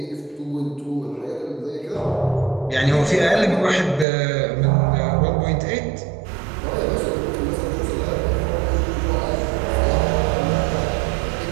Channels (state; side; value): drops out; left; at 4.0 s